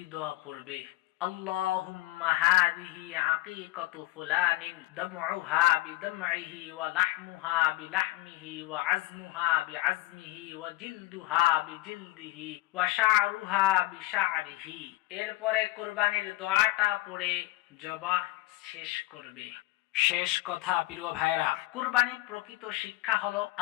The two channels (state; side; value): quieter; right; 17.9 dB